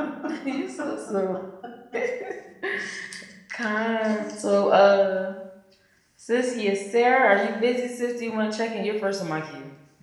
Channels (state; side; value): identical; both; correlation 1.00